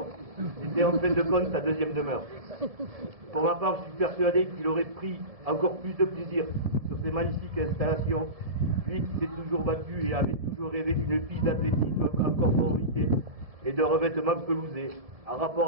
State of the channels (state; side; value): late; left; 1.7 ms